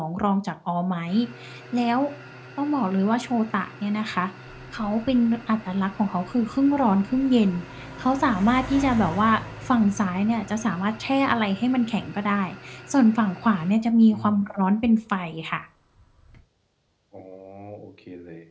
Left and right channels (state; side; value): identical; both; correlation 1.00